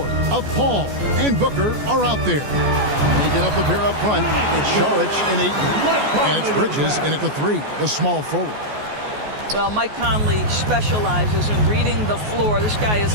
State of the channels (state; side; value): late; left; 14 ms